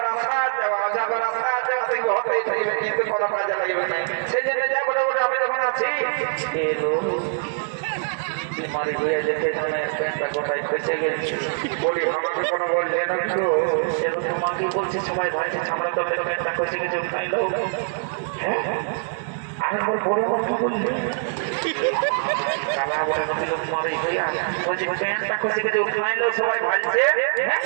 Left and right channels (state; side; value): silent; left; 63 dB below the other